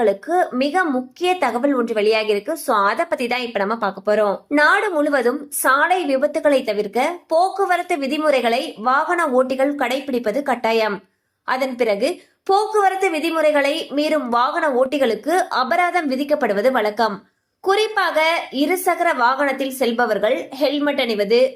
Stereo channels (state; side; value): identical; both; correlation 1.00